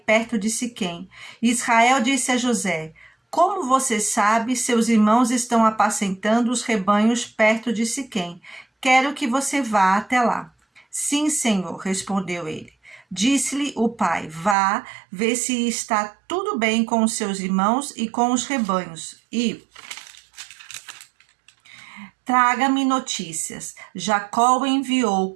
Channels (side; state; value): left; drops out; at 14.6 s